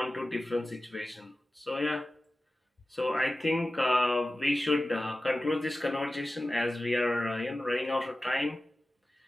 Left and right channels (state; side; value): normal; both; correlation 0.95